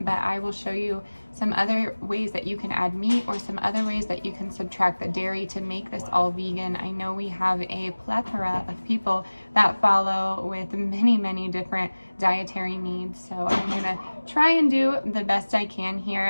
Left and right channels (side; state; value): both; inverted; correlation -1.00